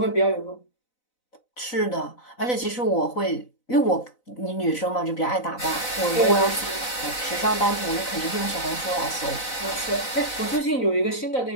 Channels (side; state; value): right; late; 4.0 ms